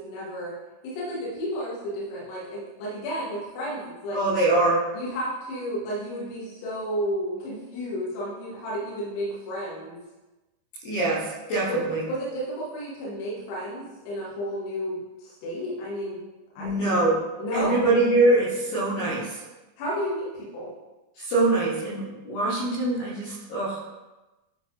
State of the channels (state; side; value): late; right; 25 ms